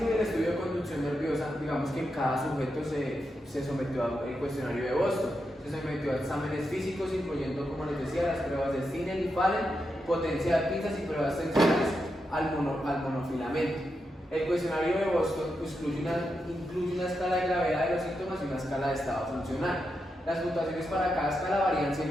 y el estudio de conducción nerviosa, digamos que cada sujeto se sometió al cuestionario de Boston, se sometió a exámenes físicos, incluyendo, como les decía, las pruebas de Stinel y Fallen, potencia de pinzas y pruebas tensionales al monofilamento. El cuestionario de Boston incluye una escala de gravedad de los síntomas y una escala de estado funcional. Las puntuaciones para cada escala varían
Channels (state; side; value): normal; both; correlation 0.86